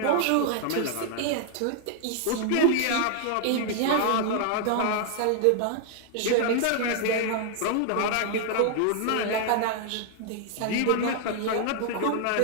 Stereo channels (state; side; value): different; both; correlation 0.00